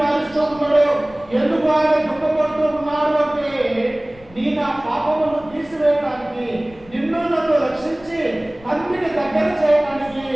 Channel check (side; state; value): left; noise; rumble, 23 dB below the sound